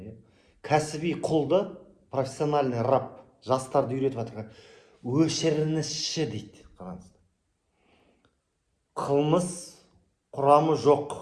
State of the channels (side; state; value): both; identical; correlation 1.00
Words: кәсіби құлды, профессиональный раб, жастарды үйретіп жатыр. Өшіріңізші дейді. Қараңыздар. Қылмыс құрамы